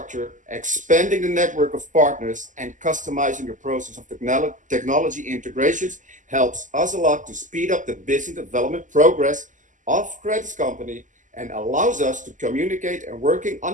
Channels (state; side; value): late; left; 0.37 ms